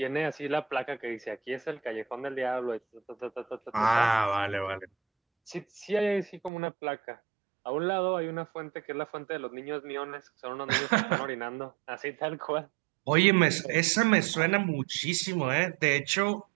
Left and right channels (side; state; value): left; drops out; at 6.5 s